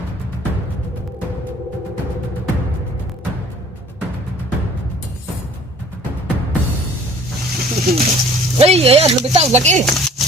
Ay, ayan, lumitaw, laki.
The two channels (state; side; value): normal; both; correlation 0.51